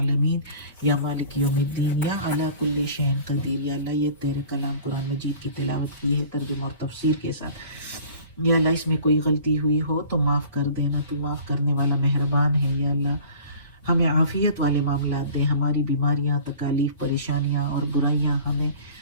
یا مالک یوم الدین، یا علی کل شیء قدیر۔ یا اللہ یہ تیرے کلام قرآن مجید کی تلاوت کی ہے ترجمہ اور تفسیر کے ساتھ، یا اللہ اس میں کوئی غلطی ہوئی ہو تو معاف کر دینا، تو معاف کرنے والا مہربان ہے۔ یا اللہ ہمیں عافیت والے معاملات دیں، ہماری بیماریاں، تکالیف، پریشانیاں اور برائیاں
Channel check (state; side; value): inverted; both; correlation -0.45